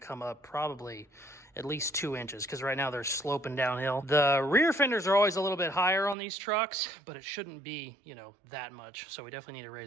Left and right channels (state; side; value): drops out; left; at 6.2 s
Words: up probably at least 2 inches, because right now they're sloping downhill. The rear fenders are always a little bit higher on these trucks, but it shouldn't be, you know, that much. So we definitely need to